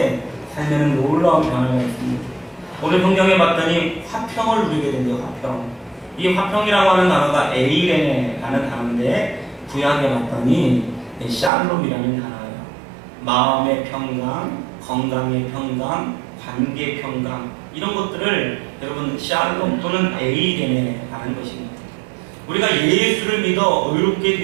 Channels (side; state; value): left; drops out; at 11.5 s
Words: 삶에는 놀라운 변화가 있습니다. 오늘 성경에 봤더니 화평을 누리게 된대요. 화평. 이 화평이라고 하는 단어가 에이레네라는 단어인데 구약에 봤더니 샬롬이라는 단어예요. 마음의 평강, 건강의 평강, 관계 평강 이런 것들을 여러분 샬롬 또는 에이레네라는 것입니다. 우리가 예수를 믿어 의롭게